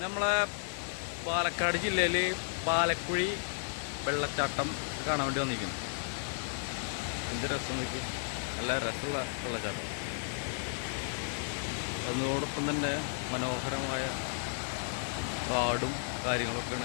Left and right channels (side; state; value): right; silent; 55 dB below the other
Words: നമ്മളെ പാലക്കാട് ജില്ലയിൽ പാലക്കുഴി വെള്ളച്ചാട്ടം കാണാൻ വേണ്ടി വന്നിരിക്കുന്നു. എന്ത് രസം നോക്കി, നല്ല രസമുള്ള വെള്ളച്ചാട്ടം. അതിനോടൊപ്പം തന്നെ മനോഹരമായ കാടും